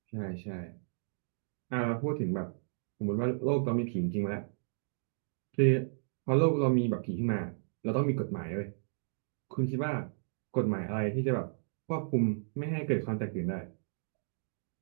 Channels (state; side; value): silent; left; digital silence